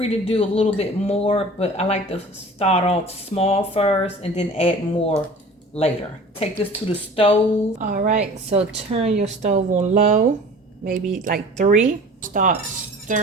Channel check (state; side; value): normal; both; correlation 0.43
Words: to do a little bit more, but I like to start off small first and then add more later. Take this to the stove. All right, so turn your stove on low, maybe like 3. Start